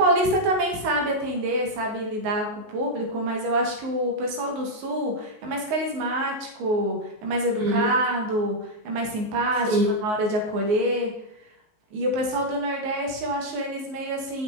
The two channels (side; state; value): left; late; 19 ms